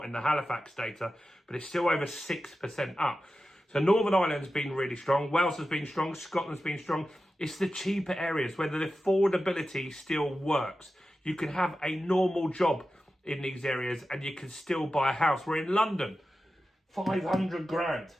in the Halifax data, but it's still over 6% up. So Northern Ireland's been really strong. Wales has been strong. Scotland's been strong. It's the cheaper areas where the affordability still works. You can have a normal job in these areas and you can still buy a house. We're in London, 500 grand,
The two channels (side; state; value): both; normal; correlation 0.93